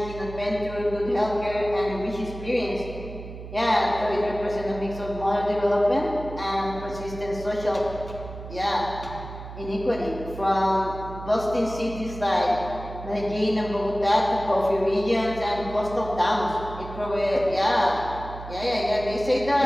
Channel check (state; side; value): noise; right; hum, 11 dB below the sound